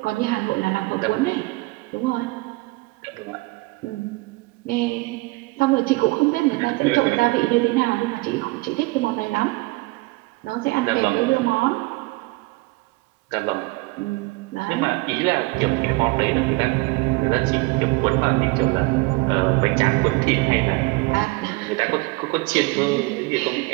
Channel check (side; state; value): left; quieter; 23.9 dB